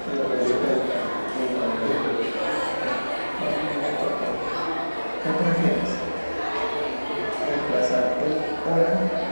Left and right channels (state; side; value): inverted; both; correlation -1.00